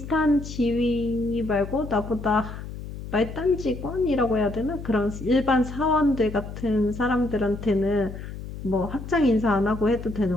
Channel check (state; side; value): noise; left; hum, 10 dB below the sound